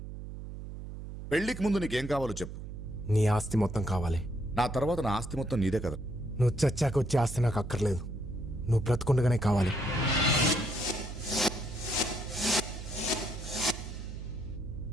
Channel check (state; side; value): noise; right; hum, 9 dB below the sound